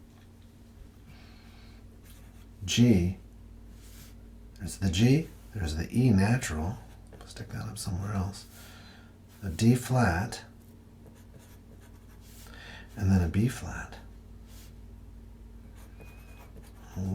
G, there's the G, there's the E natural, stick that up somewhere else, a D flat, and then a B flat.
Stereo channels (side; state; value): both; identical; correlation 1.00